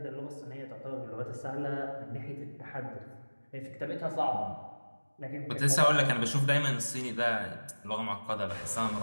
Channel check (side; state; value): both; inverted; correlation -1.00